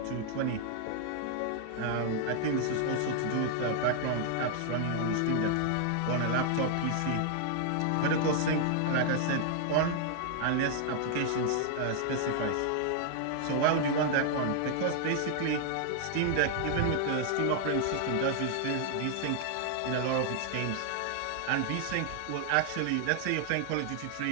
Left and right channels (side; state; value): both; different; correlation 0.00